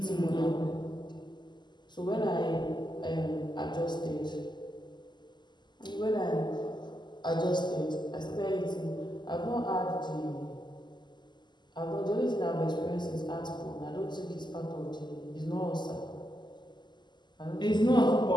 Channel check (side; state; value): right; late; 0.21 ms